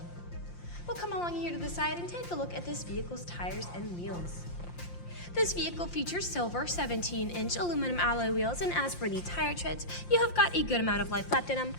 We'll come along here to the side and take a look at this vehicle's tires and wheels. This vehicle features silver 17-inch aluminum alloy wheels, and as for the tire treads, you have got a good amount of life left in them,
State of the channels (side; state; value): right; late; 5.7 ms